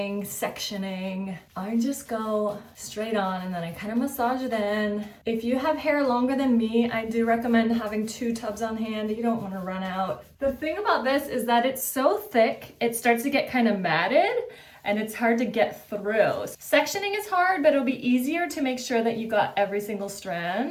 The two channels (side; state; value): both; identical; correlation 1.00